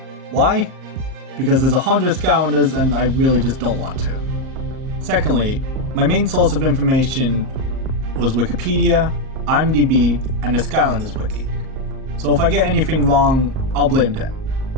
Why? Because there's 100 Skylanders and I really just don't want to. Secondly, my main source of information was Wikipedia, IMDb, and the Skylanders wiki. So if I get anything wrong, I'll blame them.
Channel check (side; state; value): left; late; 37 ms